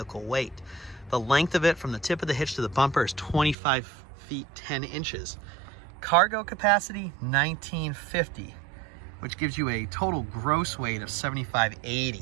weight. The length of it from the tip of the hitch to the bumper is 25 feet 10 inches. Cargo capacity, 1950, which gives you a total gross weight of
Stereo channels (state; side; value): drops out; left; at 3.6 s